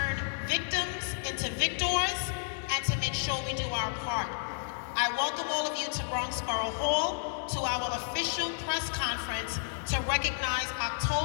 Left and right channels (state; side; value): silent; right; digital silence